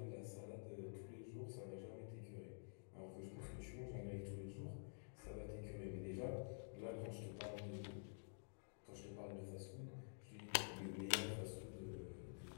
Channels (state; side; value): silent; right; digital silence